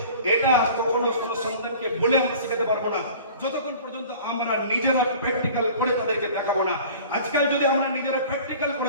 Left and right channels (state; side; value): inverted; both; correlation -0.44